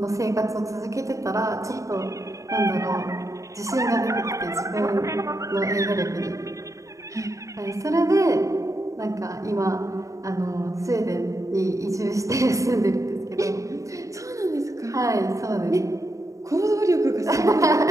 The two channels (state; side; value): late; left; 0.16 ms